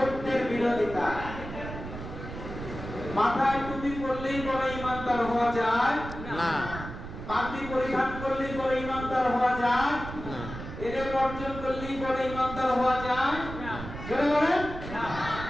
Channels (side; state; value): right; noise; rumble, 10 dB below the sound